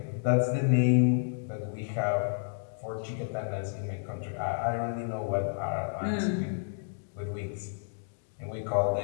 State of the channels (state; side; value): silent; right; digital silence